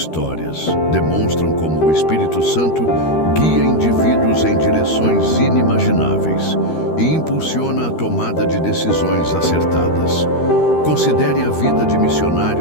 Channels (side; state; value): right; late; 13 ms